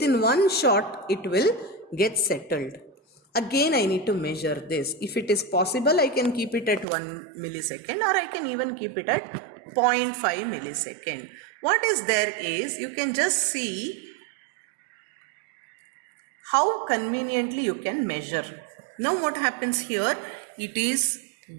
one shot it will get settled. Again I need to measure this. If it is possible, I can keep it at 1 millisecond, or I can even keep it at 0.5 millisecond. What is there is, you can just see how conveniently you can measure. Now what happens here? It is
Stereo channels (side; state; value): left; drops out; at 6.9 s